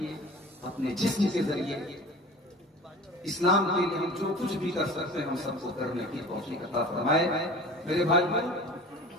اپنے جسم کے ذریعے اسلام کے لیے ہم جو کچھ بھی کر سکتے ہیں ہم سب کو کرنے کی توفیق عطا فرمائے۔ میرے بھائی،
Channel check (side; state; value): both; normal; correlation 0.40